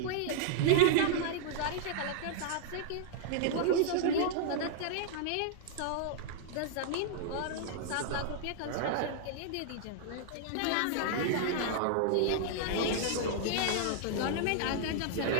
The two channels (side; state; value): both; different; correlation -0.01